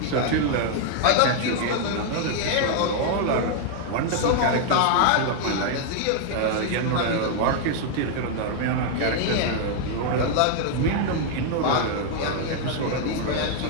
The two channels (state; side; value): different; both; correlation 0.00